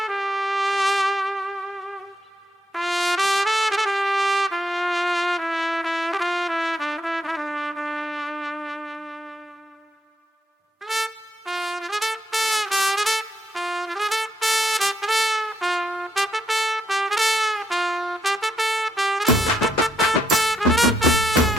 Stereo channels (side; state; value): both; normal; correlation 0.76